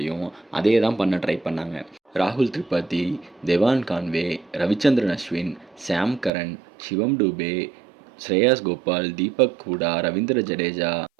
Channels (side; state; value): left; drops out; at 6.3 s